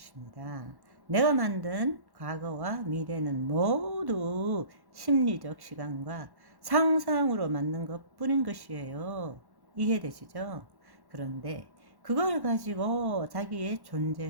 내가 만든 과거와 미래는 모두 심리적 시간과 상상으로 만든 것 뿐인 것이에요. 이해되시죠? 그런데 그걸 가지고 자기의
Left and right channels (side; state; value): left; late; 1.1 ms